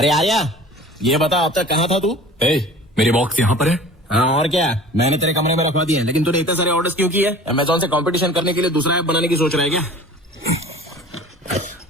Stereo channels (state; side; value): normal; both; correlation 0.43